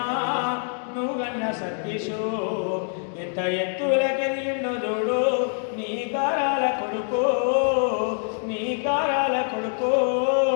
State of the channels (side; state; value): right; silent; 55 dB below the other